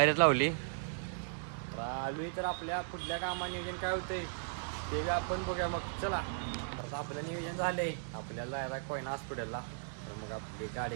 लावली. आलोय तर आपल्या पुढल्या कामा नियोजन काय होतंय ते आपण बघूया मग. चला. तर आपलं नियोजन झालंय आपल्याला जायला कोयना हॉस्पिटलला. तर मग आपली गाडी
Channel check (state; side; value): silent; left; digital silence